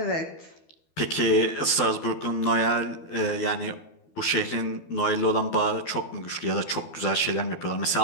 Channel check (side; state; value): right; late; 12 ms